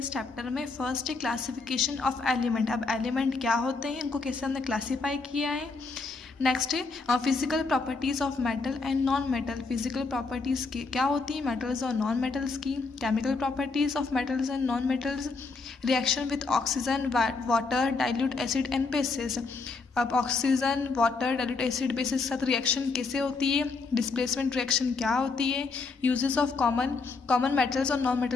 चैप्टर में. फर्स्ट है क्लासिफिकेशन ऑफ एलिमेंट. अब एलिमेंट क्या होते हैं, इनको कैसे हमने क्लासीफाई किया है. नेक्स्ट है physical properties of metal and non metal. Physical properties की क्या होती है मेटल्स और नॉन मेटल्स की. Chemical properties of metals and non metals. Reaction with oxygen, water, dilute acid and bases. अब oxygen, water, dilute acid, bases के साथ reaction कैसे होती है, डिस्प्लेसमेंट रिएक्शन क्या होती है, यूजेस ऑफ कॉमन मेटल्स और नॉन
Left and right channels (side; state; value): right; quieter; 4.2 dB